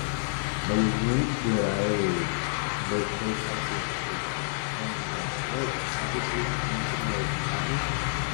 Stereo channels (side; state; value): right; silent; digital silence